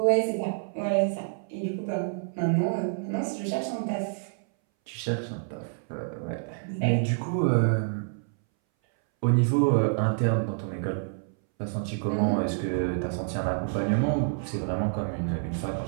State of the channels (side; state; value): left; silent; 59 dB below the other